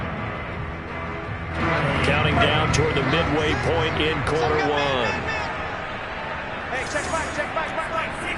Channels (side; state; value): both; identical; correlation 1.00